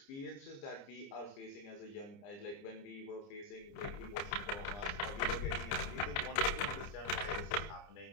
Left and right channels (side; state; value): right; late; 30 ms